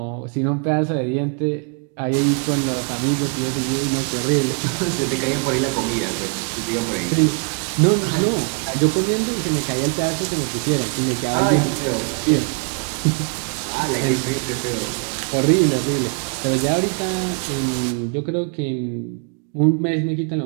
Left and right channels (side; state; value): left; quieter; 37.5 dB